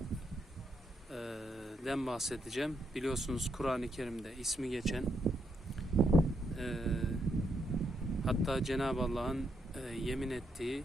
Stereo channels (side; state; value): both; normal; correlation 0.79